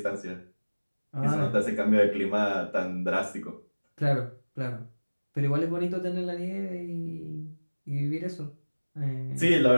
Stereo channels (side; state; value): both; inverted; correlation -1.00